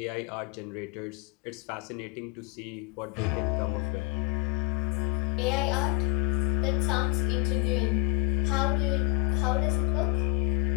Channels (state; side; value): quieter; right; 28.9 dB